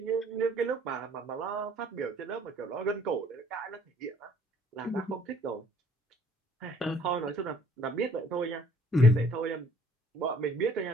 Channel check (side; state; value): both; normal; correlation 0.59